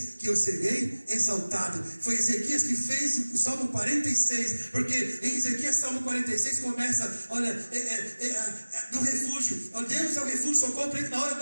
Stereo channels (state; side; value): inverted; both; correlation -1.00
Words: que eu serei exaltado. Foi Ezequias que fez o Salmo 46, porque em Ezequias Salmo 46 começa, olha, do refúgio. Deus é o refúgio, socorro para ele na hora